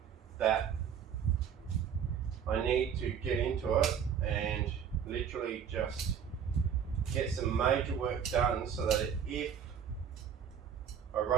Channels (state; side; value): quieter; left; 7.8 dB